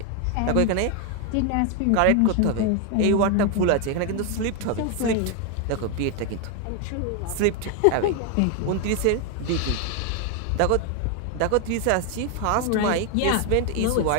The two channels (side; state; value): both; different; correlation 0.01